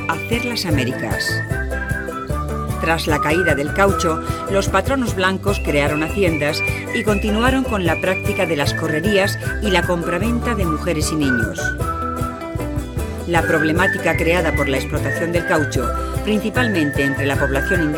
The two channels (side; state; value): both; identical; correlation 1.00